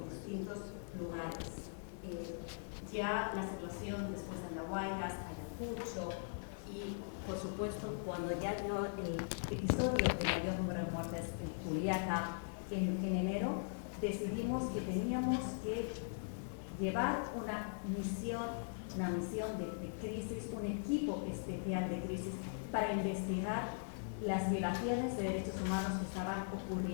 distintos lugares. Ya la situación después de Andahuaylas, Ayacucho y, por supuesto, cuando ya dio el episodio de mayor número de muertes en Juliaca en enero, decidimos que teníamos que llevar una misión de crisis, un equipo especial de crisis para investigar las violaciones de derechos humanos que estaban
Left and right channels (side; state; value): right; silent; digital silence